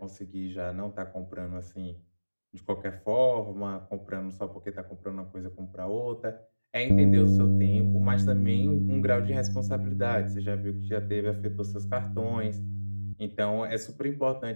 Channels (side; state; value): both; inverted; correlation -1.00